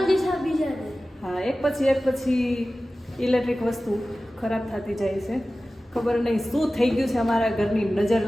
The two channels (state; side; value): normal; both; correlation 0.96